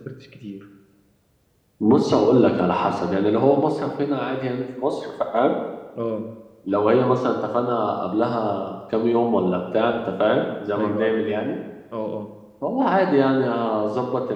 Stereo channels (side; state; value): both; identical; correlation 1.00